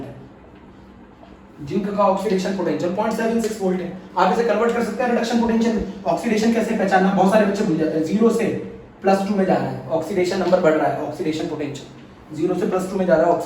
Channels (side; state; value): both; identical; correlation 1.00